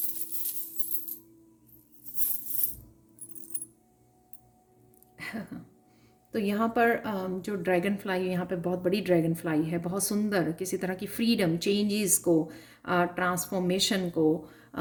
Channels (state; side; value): identical; both; correlation 1.00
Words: तो यहाँ पर जो ड्रैगन फ्लाई, यहाँ पे बहुत बड़ी ड्रैगन फ्लाई है, बहुत सुंदर, किसी तरह की फ्रीडम, चेंजेस को, ट्रांसफॉर्मेशन को,